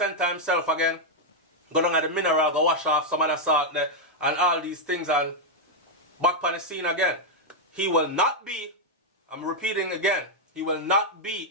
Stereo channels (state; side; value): normal; both; correlation -0.01